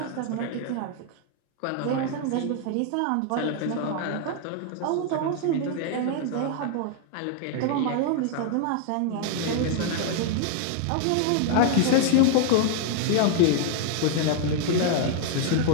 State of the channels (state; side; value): different; both; correlation 0.00